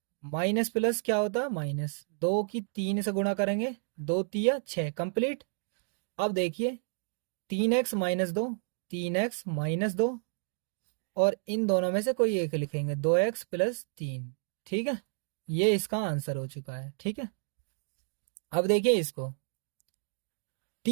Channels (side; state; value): left; silent; 57 dB below the other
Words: minus plus क्या होता है माइनस, 2 की 3 से गुणा करेंगे, 2 तिया 6 कंप्लीट। अब देखिए 3x माइनस 2, 3x माइनस 2 और इन दोनों में से कोई एक लिखेंगे, 2x प्लस 3। ठीक है, ये इसका आंसर हो चुका है। ठीक है, अब देखिए इसको